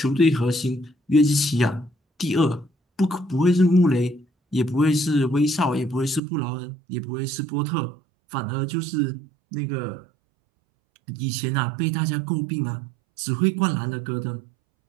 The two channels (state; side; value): drops out; left; at 6.2 s